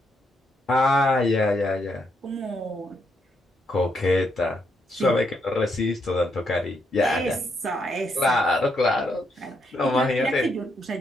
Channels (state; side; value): normal; both; correlation 0.77